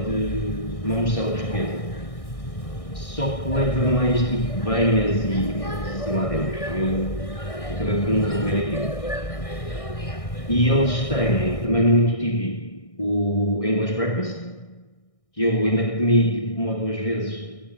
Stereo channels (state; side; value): late; right; 1.6 ms